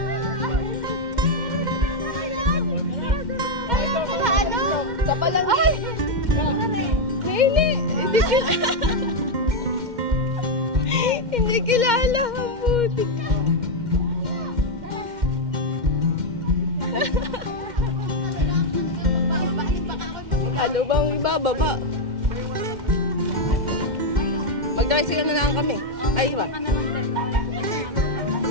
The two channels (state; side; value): late; left; 2.1 ms